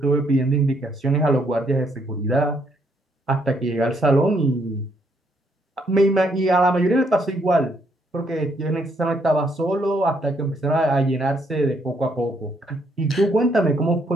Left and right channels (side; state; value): both; normal; correlation 0.72